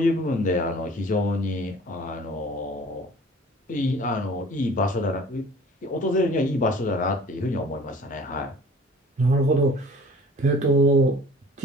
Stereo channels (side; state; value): both; normal; correlation 0.47